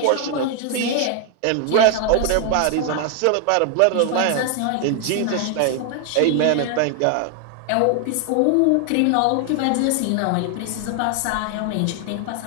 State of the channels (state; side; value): different; both; correlation 0.00